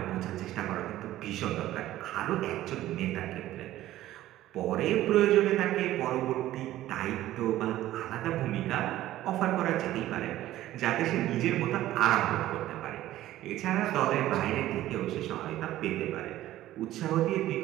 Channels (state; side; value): quieter; left; 14.5 dB